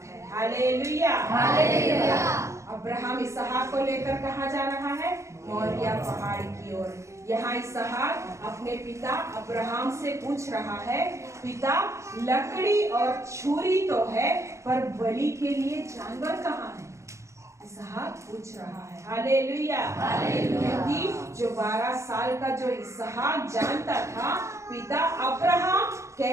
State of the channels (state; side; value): late; left; 0.14 ms